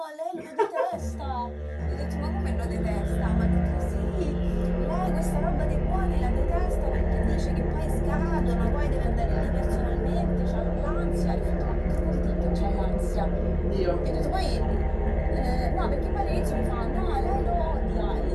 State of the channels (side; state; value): both; identical; correlation 1.00